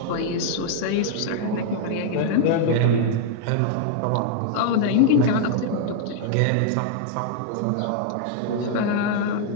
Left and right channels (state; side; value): different; both; correlation 0.00